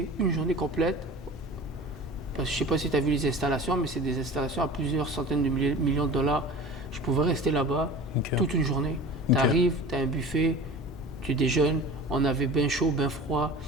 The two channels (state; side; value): normal; both; correlation 0.38